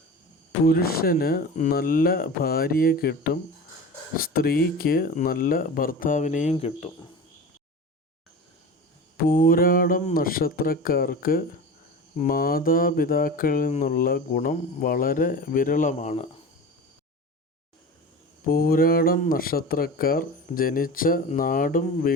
പുരുഷന് നല്ല ഭാര്യയെ കിട്ടും, സ്ത്രീക്ക് നല്ല ഭർത്താവിനെയും കിട്ടും. പൂരാടം നക്ഷത്രക്കാർക്ക് മാതാപിതാക്കളിൽ നിന്നുള്ള ഗുണം വളരെ വിരളമാണ്. പൂരാടം നക്ഷത്രക്കാർ ജനിച്ച നാടും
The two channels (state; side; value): normal; both; correlation 0.32